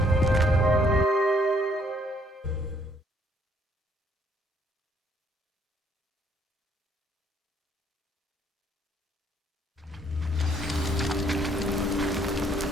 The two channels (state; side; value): normal; both; correlation 0.67